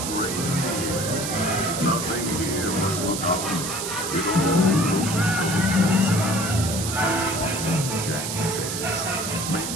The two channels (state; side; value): noise; right; hiss, 4 dB below the sound